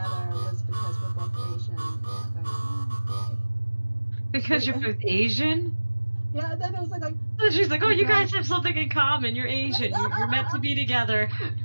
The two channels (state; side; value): inverted; both; correlation -1.00